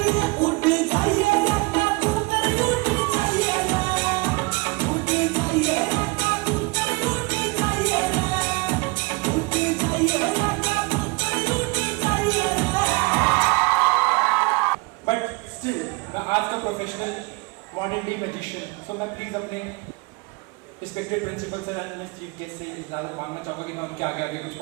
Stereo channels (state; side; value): quieter; left; 26.7 dB